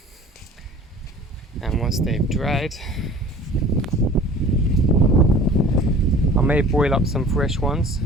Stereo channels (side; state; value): both; normal; correlation 0.45